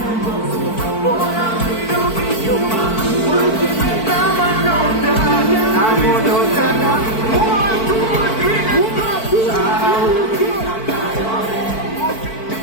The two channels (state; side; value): late; right; 4.5 ms